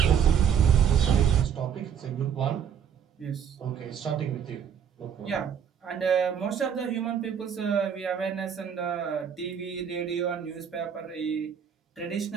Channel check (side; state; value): left; quieter; 8.0 dB